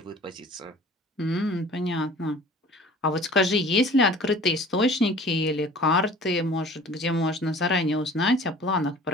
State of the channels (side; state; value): both; normal; correlation 0.45